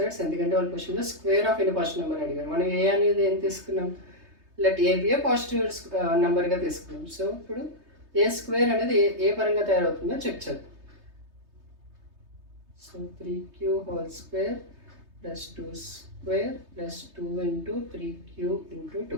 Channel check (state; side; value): late; left; 3.3 ms